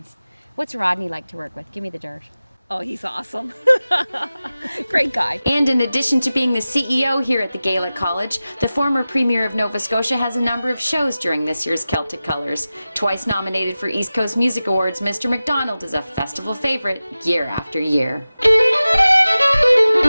What's Rodney like to work with? Give me the dirt. Oh, he's awesome. Great guy. And in addition to being the CEO here at the Gaelic College, the former Premier of Nova Scotia has a number of shows during this year's Celtic Colours. Twice nominated for East Coast Music Awards, Mr. McDonald is a festival favourite year after year.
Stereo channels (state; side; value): inverted; both; correlation -0.96